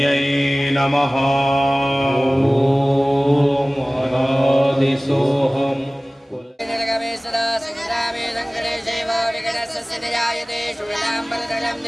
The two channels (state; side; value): normal; both; correlation 0.98